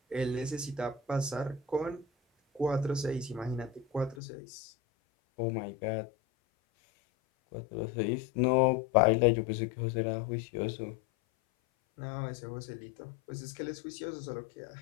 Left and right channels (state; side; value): drops out; right; at 4.2 s